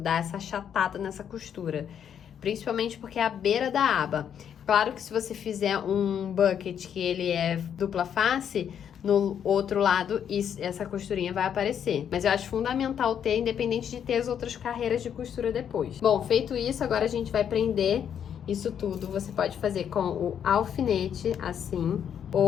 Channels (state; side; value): quieter; right; 8.6 dB